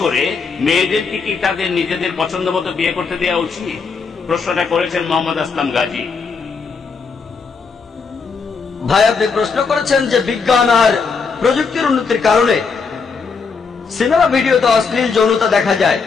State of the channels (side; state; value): right; quieter; 5.1 dB